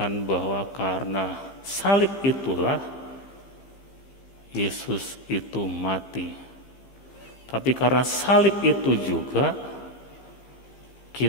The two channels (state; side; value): late; right; 15 ms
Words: bahwa karena salib itulah Yesus itu mati. Tapi karena salib itu juga